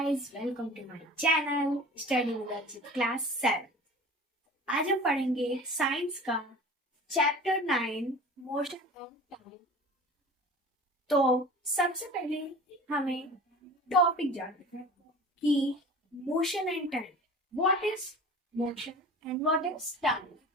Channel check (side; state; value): both; normal; correlation 0.40